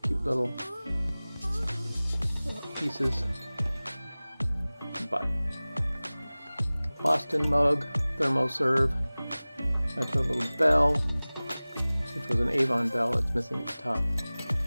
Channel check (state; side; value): inverted; both; correlation -0.99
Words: cute little pieces. But Boston mug, thermoserve. That's our little bell, which was an Avon bell. It's missing its top.